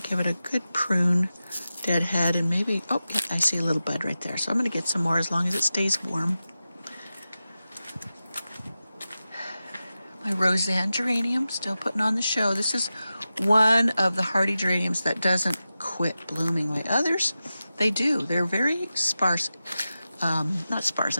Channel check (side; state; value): both; inverted; correlation -0.93